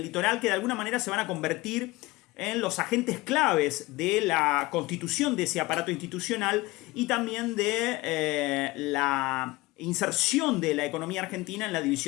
litoral, que de alguna manera se van a convertir en los agentes claves de la constitución de ese aparato institucional y también de la inserción de la economía argentina en la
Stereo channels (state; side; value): quieter; right; 20.9 dB